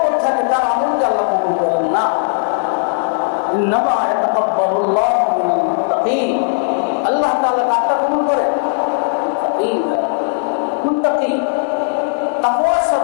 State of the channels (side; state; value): right; silent; digital silence